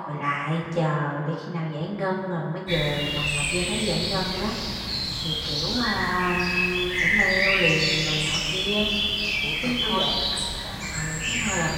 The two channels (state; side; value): identical; both; correlation 1.00